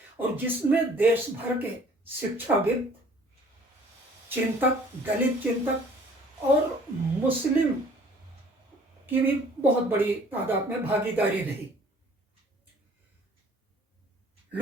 और जिसमें देश भर के शिक्षाविद, चिंतक, दलित चिंतक और मुस्लिम की भी बहुत बड़ी तादाद में भागीदारी रही।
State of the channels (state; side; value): normal; both; correlation 0.54